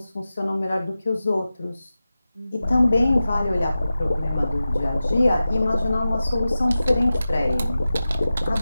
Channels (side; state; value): both; inverted; correlation -0.94